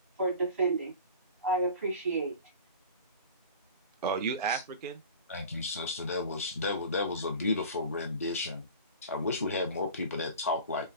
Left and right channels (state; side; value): inverted; both; correlation -0.38